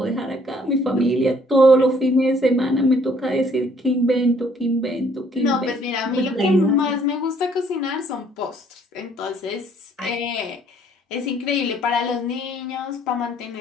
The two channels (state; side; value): normal; both; correlation 0.62